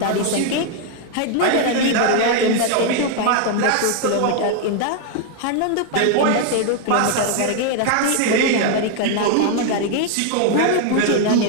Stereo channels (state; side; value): different; both; correlation 0.00